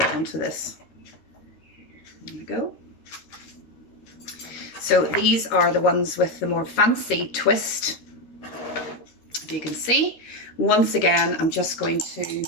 onto this. There we go. So these are the ones with the more fancy twist. If you can see, once again, I'm just going to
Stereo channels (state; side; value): late; right; 13 ms